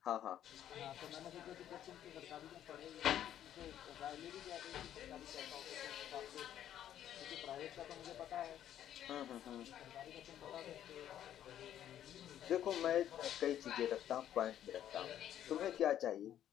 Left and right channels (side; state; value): right; quieter; 11.0 dB